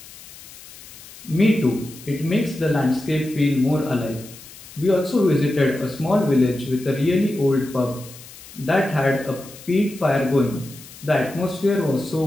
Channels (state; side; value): noise; left; hiss, 18 dB below the sound